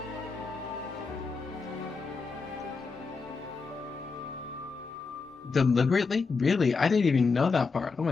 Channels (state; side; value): quieter; right; 4.6 dB